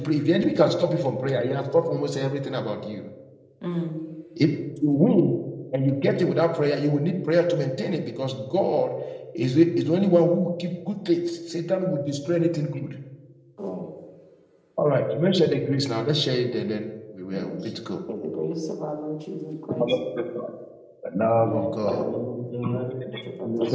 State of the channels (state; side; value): identical; both; correlation 1.00